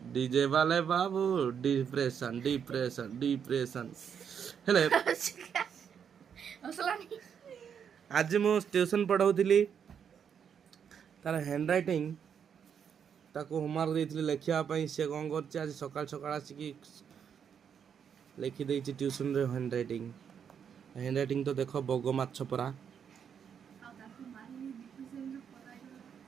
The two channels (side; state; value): left; quieter; 7.6 dB